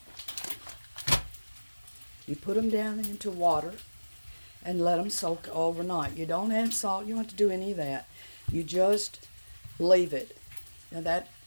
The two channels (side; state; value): both; inverted; correlation -1.00